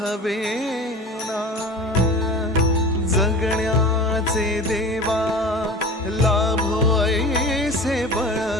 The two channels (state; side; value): normal; both; correlation 0.36